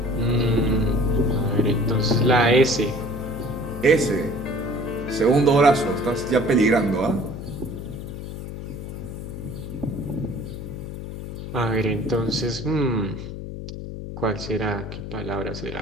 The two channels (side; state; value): left; noise; hum, 9 dB below the sound